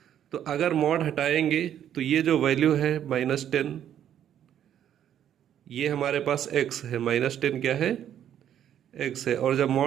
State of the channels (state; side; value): quieter; left; 10.2 dB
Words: तो अगर मॉड हटाएंगे तो ये जो वैल्यू है -10, ये हमारे पास x है, -10 क्या है? x है। और जब